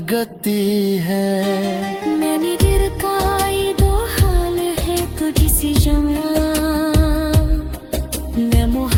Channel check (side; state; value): both; identical; correlation 1.00